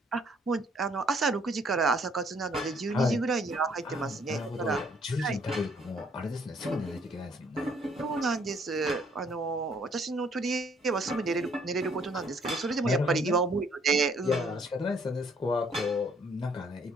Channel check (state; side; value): normal; both; correlation 0.64